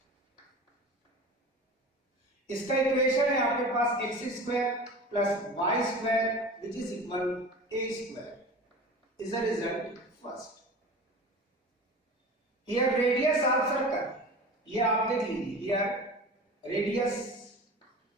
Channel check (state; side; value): normal; both; correlation 0.35